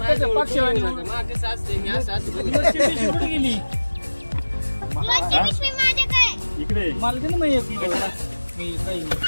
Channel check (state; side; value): inverted; both; correlation -1.00